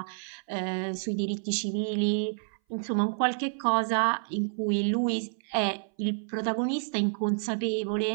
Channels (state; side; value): silent; left; 58 dB below the other